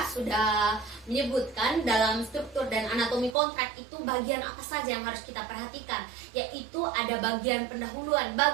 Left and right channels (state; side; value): drops out; left; at 3.4 s